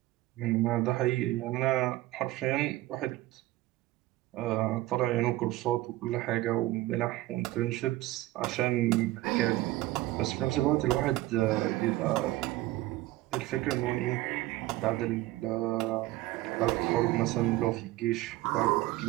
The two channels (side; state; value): left; quieter; 17.3 dB